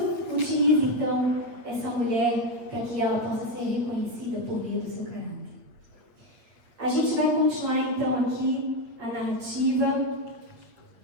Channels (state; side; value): late; left; 8.5 ms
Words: utiliza, então, essa mulher para que ela possa ser reconhecida por meio do seu caráter. A gente vai continuar, então, aqui a narrativa.